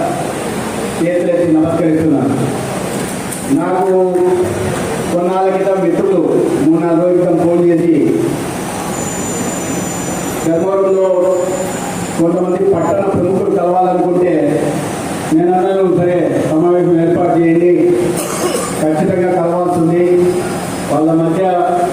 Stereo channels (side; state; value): both; identical; correlation 1.00